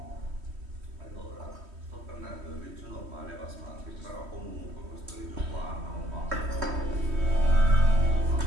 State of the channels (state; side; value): late; left; 3.1 ms